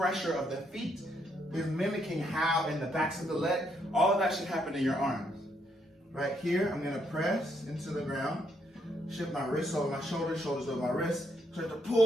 of the feet is mimicking how in the backs of the leg, all of that should happen in your arms. Right here, I'm gonna press into the ground, shift my wrists over my shoulders, shoulders over my wrists, start to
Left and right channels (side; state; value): both; normal; correlation 0.75